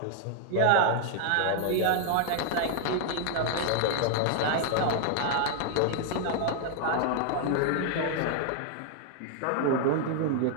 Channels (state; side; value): different; both; correlation 0.00